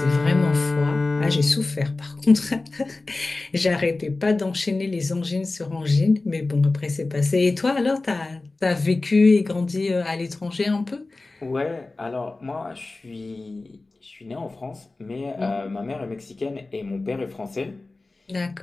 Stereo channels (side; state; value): right; quieter; 3.3 dB